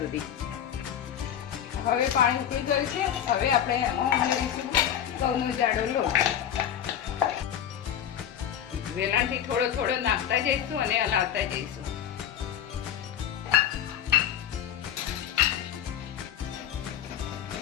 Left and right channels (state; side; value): quieter; right; 9.7 dB